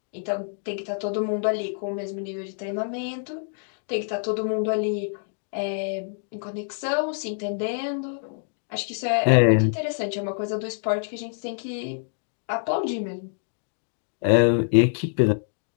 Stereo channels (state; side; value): silent; right; digital silence